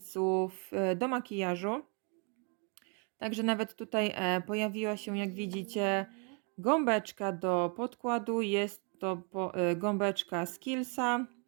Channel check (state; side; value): quieter; left; 36.5 dB